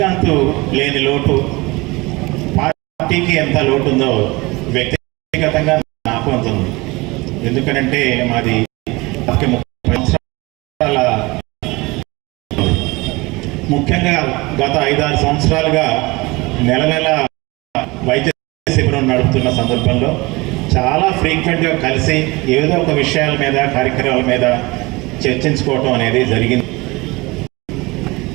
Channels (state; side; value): quieter; left; 23.5 dB